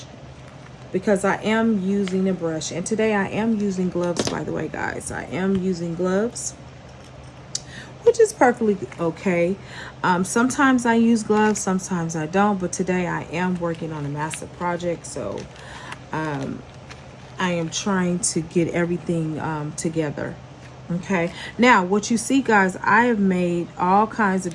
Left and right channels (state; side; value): identical; both; correlation 1.00